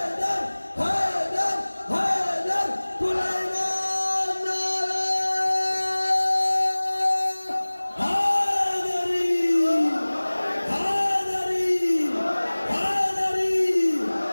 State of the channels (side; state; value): both; inverted; correlation -1.00